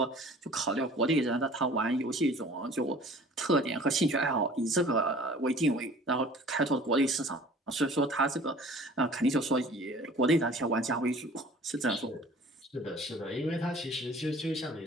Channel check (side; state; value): both; normal; correlation 0.48